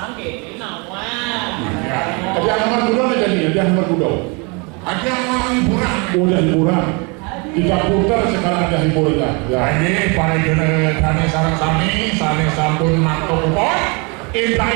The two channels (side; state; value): left; quieter; 30.9 dB